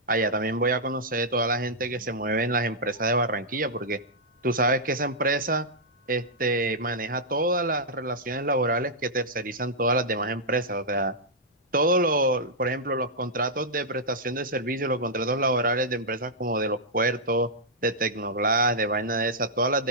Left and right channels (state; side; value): normal; both; correlation -0.09